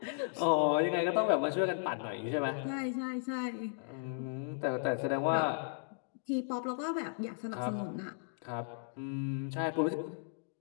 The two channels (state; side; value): silent; right; digital silence